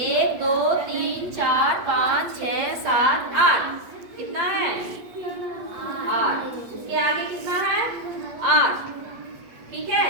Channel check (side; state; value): left; late; 8.3 ms